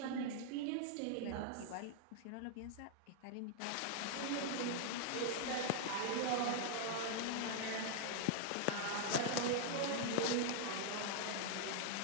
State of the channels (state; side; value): different; both; correlation 0.00